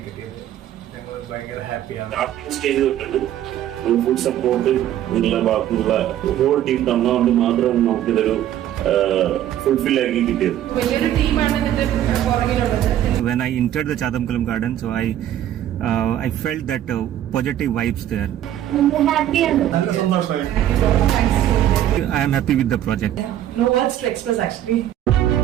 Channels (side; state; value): left; quieter; 11.9 dB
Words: കിട്ടിയത്. ഞങ്ങൾ ഭയങ്കര ഹാപ്പിയാണ്. സ്റ്റാർട്ടിംഗ് സ്റ്റേജ് തൊട്ടുണ്ട് ഫുൾ സപ്പോർട്ട് നിങ്ങളുടെ ഭാഗത്തുനിന്നുള്ള ഹോൾ ടീം തന്നുകൊണ്ട് മാത്രമാണ് നമുക്കിതൊരു ഫുൾഫിൽ ആക്കി കിട്ടിയത്. വലിയൊരു ടീമാണ് ഇതിന്റെ പുറകിലുള്ളത്. When I entered the Chadamkulam garden, so I felt that positive vibes there. നല്ല സന്തോഷമായി. I am happy with the project. No words to express actually.